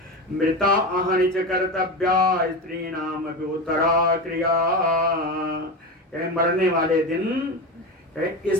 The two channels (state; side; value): normal; both; correlation 0.22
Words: मृता अहनिच कर्तव्या स्त्री नाम उत्तरा क्रिया, मरने वाले दिन